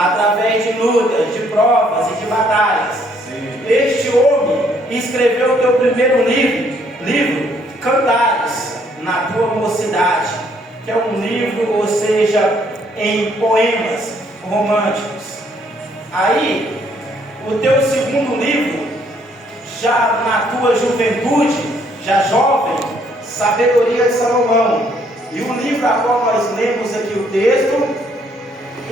de lutas, de provas e de batalhas. Este homem escreveu o teu primeiro livro, Cantares, na tua mocidade, que é um livro, ou seja, em poemas românticos. Aí, o teu segundo livro, já na tua juventude, já jovem, Sabedoria de Salomão. E o livro a qual nós lemos aqui o texto,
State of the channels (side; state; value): both; normal; correlation 0.67